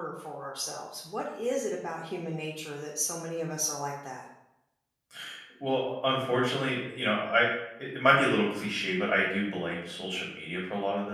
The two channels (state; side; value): identical; both; correlation 1.00